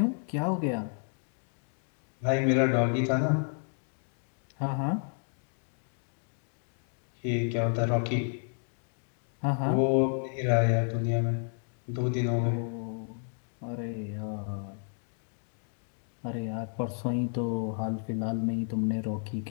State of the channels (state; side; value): silent; right; 57 dB below the other